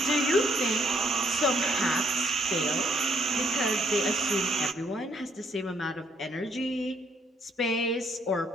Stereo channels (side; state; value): both; normal; correlation 0.68